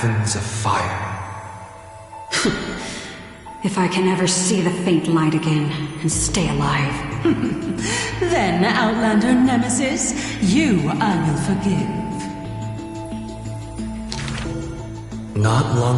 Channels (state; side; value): identical; both; correlation 1.00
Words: of fire. If I can ever see the faint light again and stay alive. Then, Outlander Nemesis, you I will forgive. Not